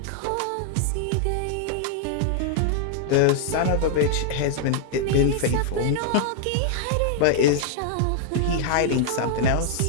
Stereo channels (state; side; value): different; both; correlation -0.01